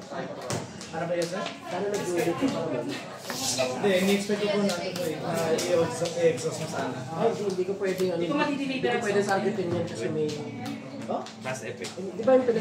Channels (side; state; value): both; identical; correlation 1.00